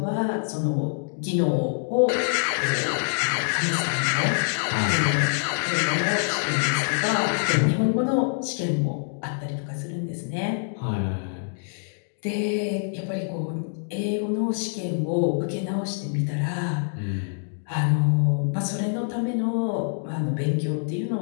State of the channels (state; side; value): silent; right; digital silence